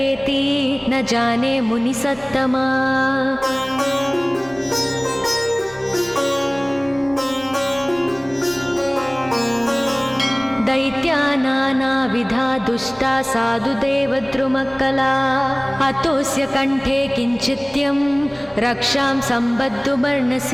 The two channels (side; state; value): right; noise; rumble, 27 dB below the sound